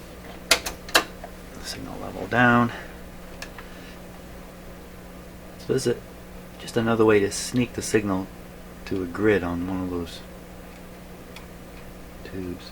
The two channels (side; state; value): both; identical; correlation 1.00